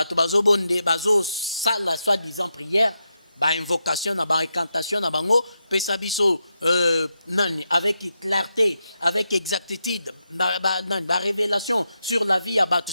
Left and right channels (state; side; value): inverted; both; correlation -0.86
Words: bazo bonde, bazo sala, soi-disant prière, ba invocation, na ba recantation, na bango, pesa biso, nani, avec clarté, avec exactitude, ba révélation sur la vie à bato,